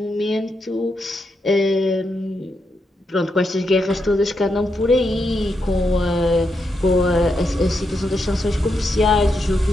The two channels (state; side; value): normal; both; correlation 0.83